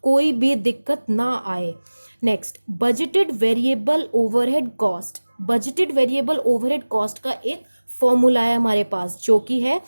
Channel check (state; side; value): inverted; both; correlation -1.00